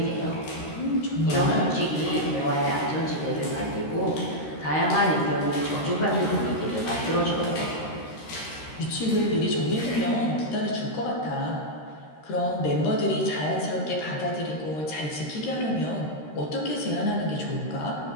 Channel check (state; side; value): late; right; 13 ms